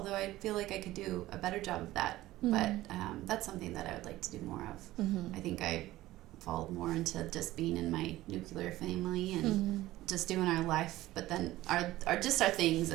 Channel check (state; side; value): quieter; left; 16.4 dB